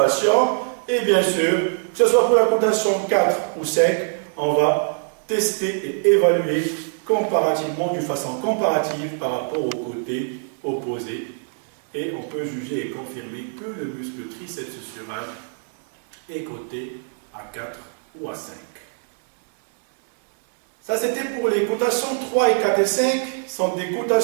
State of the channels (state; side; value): silent; left; 60 dB below the other